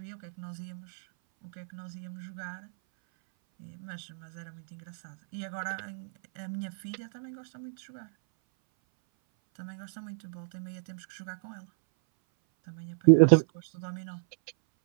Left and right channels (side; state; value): left; silent; 57 dB below the other